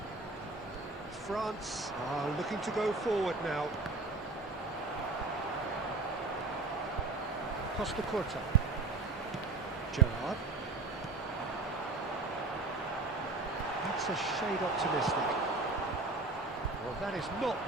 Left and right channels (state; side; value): quieter; left; 3.5 dB